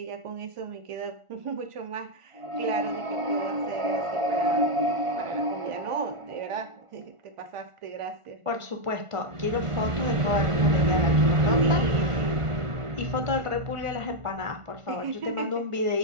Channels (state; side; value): late; left; 1.5 ms